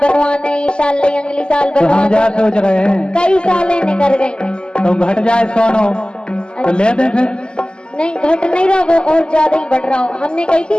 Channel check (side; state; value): right; late; 0.048 ms